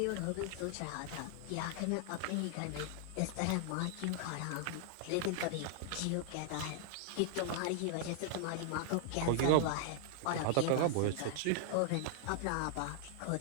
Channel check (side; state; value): both; different; correlation 0.00